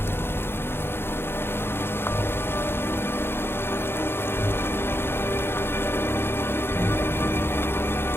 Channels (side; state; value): right; late; 0.11 ms